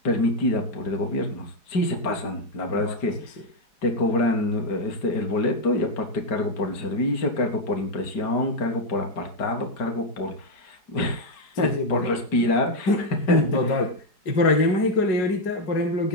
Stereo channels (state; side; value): late; right; 5.1 ms